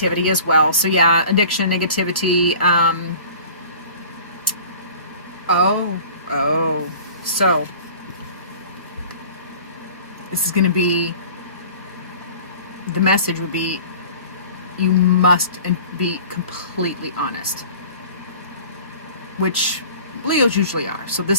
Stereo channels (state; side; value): inverted; both; correlation -0.44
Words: as well. So yeah, addiction, negativity. So this is going to be, the message would be, you must be completely honest, which Leos usually are. So